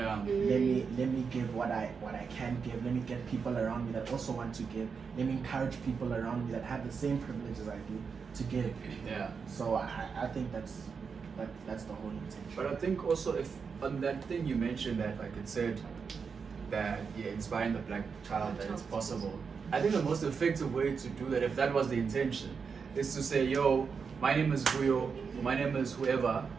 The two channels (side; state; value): left; quieter; 5.7 dB